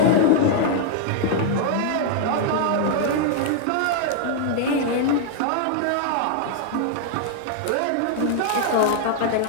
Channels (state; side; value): different; both; correlation -0.01